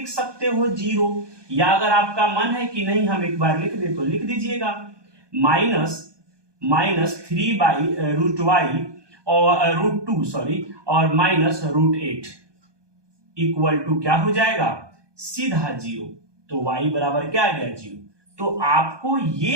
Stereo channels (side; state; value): left; late; 1.2 ms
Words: सकते हो 0, या अगर आपका मन है कि नहीं हम एक बार लिख दे तो लिख दीजिएगा, -3/√y और √2 सॉरी और -√8 इक्वल टू क्या हो जाएगा, सीधा 0। तो y बराबर क्या आ गया, 0। तो आपको